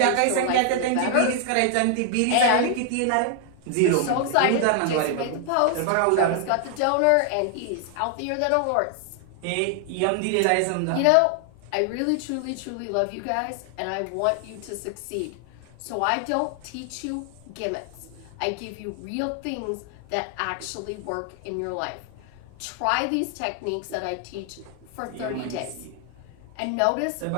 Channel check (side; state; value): both; different; correlation 0.00